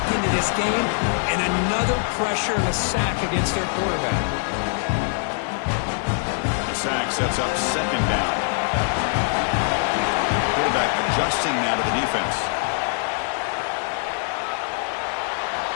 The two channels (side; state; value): right; silent; 58 dB below the other